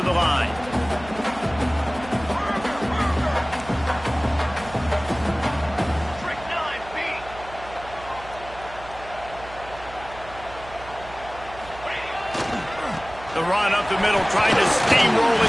the line. The run up the middle, trying to steamroll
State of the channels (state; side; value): noise; right; hum, 16 dB below the sound